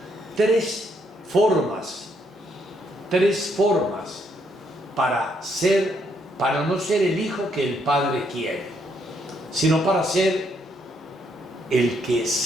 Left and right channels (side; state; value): both; normal; correlation 0.73